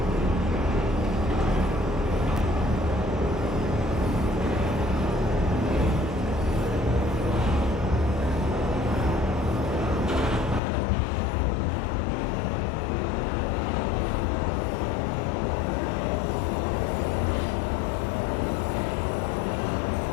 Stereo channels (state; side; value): drops out; right; at 10.6 s